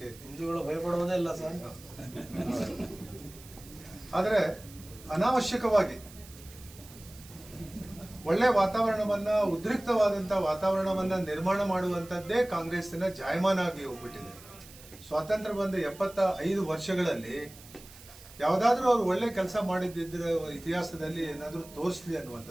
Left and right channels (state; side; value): noise; right; hiss, 20 dB below the sound